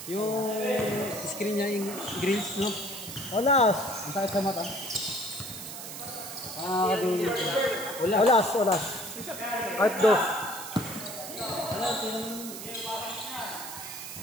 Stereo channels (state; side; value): noise; right; hiss, 10 dB below the sound